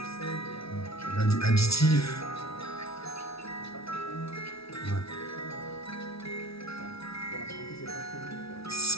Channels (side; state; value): right; late; 0.76 ms